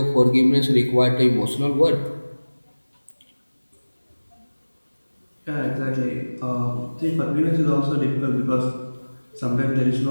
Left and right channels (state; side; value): inverted; both; correlation -1.00